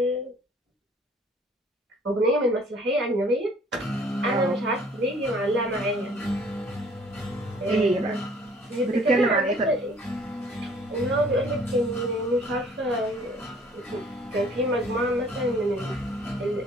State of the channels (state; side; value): normal; both; correlation 0.56